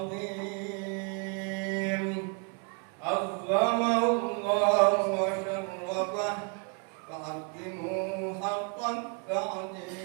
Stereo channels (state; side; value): quieter; left; 36.1 dB